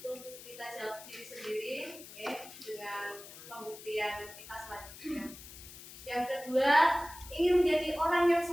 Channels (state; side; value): noise; left; hiss, 15 dB below the sound